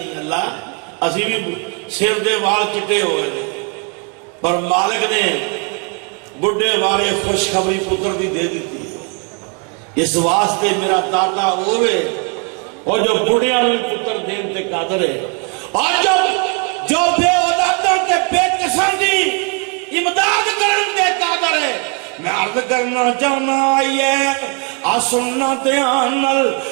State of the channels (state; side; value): quieter; left; 36.6 dB